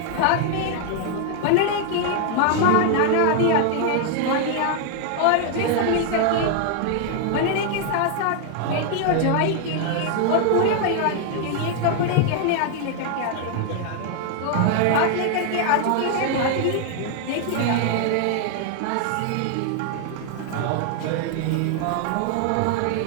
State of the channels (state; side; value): different; both; correlation 0.00